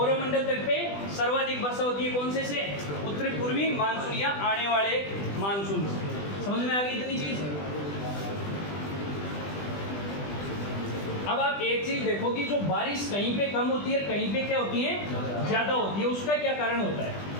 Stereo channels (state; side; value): late; right; 20 ms